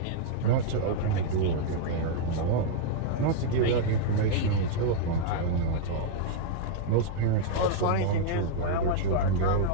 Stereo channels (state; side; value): different; both; correlation -0.01